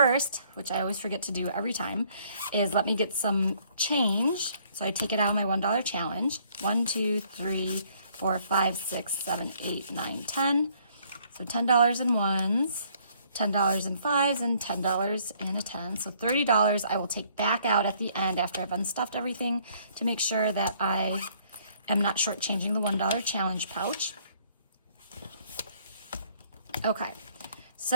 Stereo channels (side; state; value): both; inverted; correlation -0.64